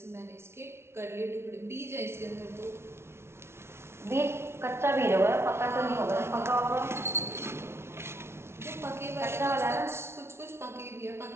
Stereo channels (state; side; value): late; left; 0.12 ms